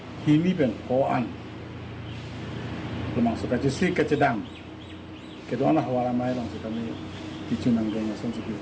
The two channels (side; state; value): both; identical; correlation 1.00